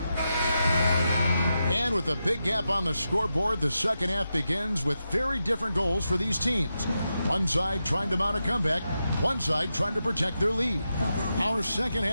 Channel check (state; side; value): inverted; both; correlation -0.88